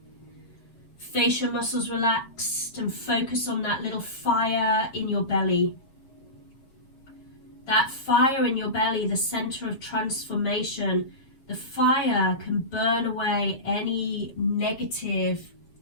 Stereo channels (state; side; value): late; right; 7.5 ms